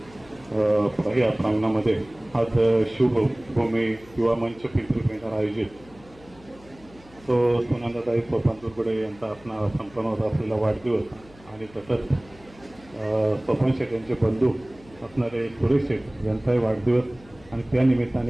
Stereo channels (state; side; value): noise; left; hum, 24 dB below the sound